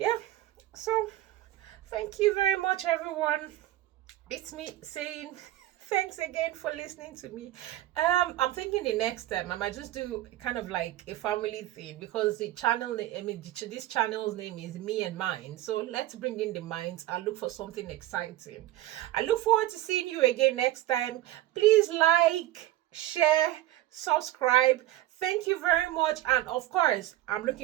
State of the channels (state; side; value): quieter; left; 14.8 dB